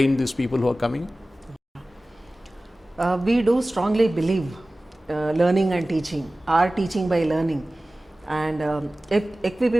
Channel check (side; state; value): both; normal; correlation 0.97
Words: these people who are coming? We do strongly believe learning and teaching, or teaching by learning, and